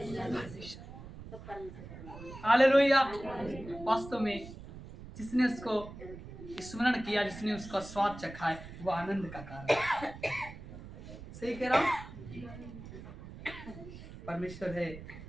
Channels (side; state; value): right; noise; rumble, 14 dB below the sound